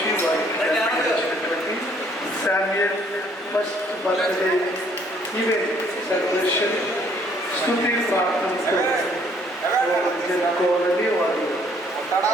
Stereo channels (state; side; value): normal; both; correlation 0.63